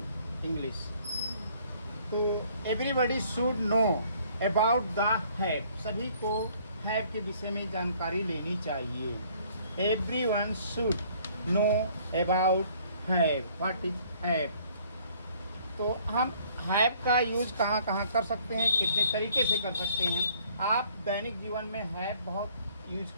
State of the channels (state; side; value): inverted; both; correlation -0.59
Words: English. तो everybody should know about the have. सभी को have के विषय में जानकारी लेनी चाहिए. Everyone should know about have. What is have? तो हम हैव का यूज कहाँ कहाँ कर सकते हैं, कितने तरीके से कर सकते हैं। आप दैनिक जीवन में हैव बहुत यूज